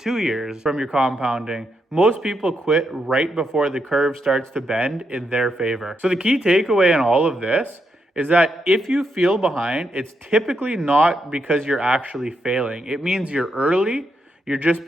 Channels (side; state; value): both; normal; correlation 0.81